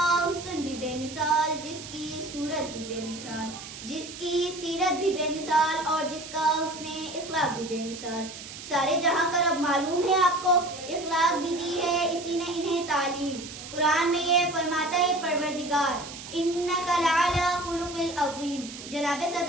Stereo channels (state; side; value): noise; right; hiss, 12 dB below the sound